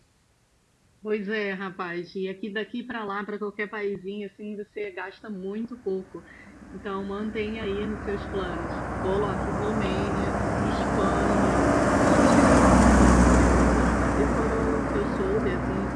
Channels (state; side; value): identical; both; correlation 1.00